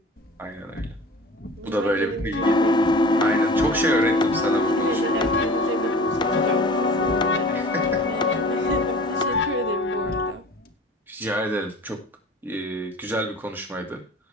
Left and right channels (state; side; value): normal; both; correlation 0.42